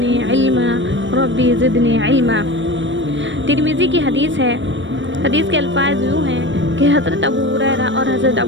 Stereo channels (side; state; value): left; late; 0.55 ms